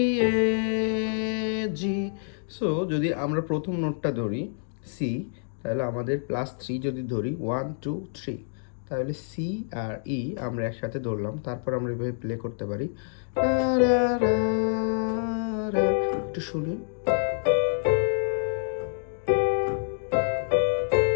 A G. So যদি আমরা প্রথম নোটটা ধরি সি, তাহলে আমাদের +3 যদি ধরি 1 2 3, তাহলে সি আর ই আমরা একসাথে ধরলাম, তারপর আমরা এভাবে প্লে করতে পারি। রা রা রা রা, একটু শুনি।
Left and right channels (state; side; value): silent; right; digital silence